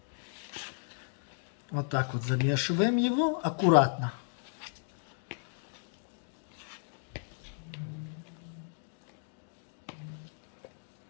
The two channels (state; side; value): silent; right; digital silence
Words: Вот так вот замешиваем его аккуратно.